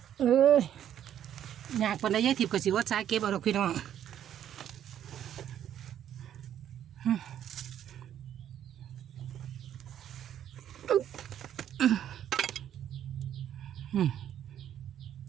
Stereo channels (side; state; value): left; quieter; 10.4 dB